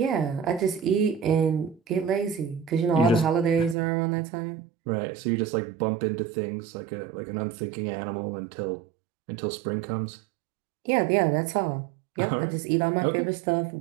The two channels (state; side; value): drops out; left; at 3.8 s